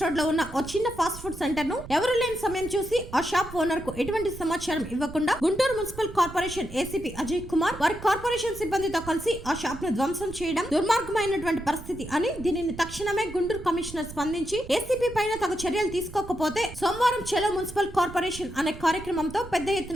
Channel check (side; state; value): right; noise; rumble, 14 dB below the sound